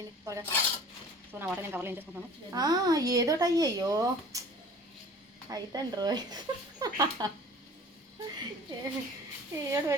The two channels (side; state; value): both; normal; correlation 0.46